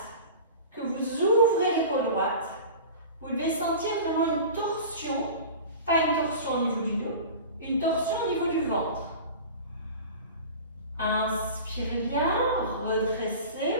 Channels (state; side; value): inverted; both; correlation -0.36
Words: que vous ouvrez l'épaule droite. Vous devez sentir vraiment une torsion, pas une torsion au niveau du dos, une torsion au niveau du ventre. Inspirez bien, redressez.